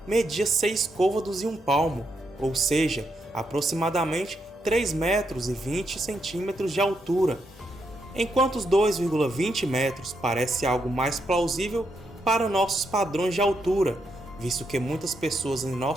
media 6 côvados e 1 palmo, ou seja, aproximadamente 3 metros e 20 centímetros de altura, enquanto os 2,20 metros parece algo mais plausível para nossos padrões de altura, visto que muitas pessoas em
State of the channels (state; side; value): normal; both; correlation 0.80